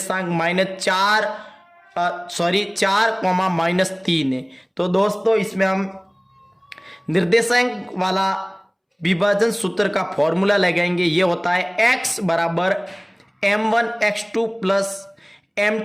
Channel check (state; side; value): identical; both; correlation 1.00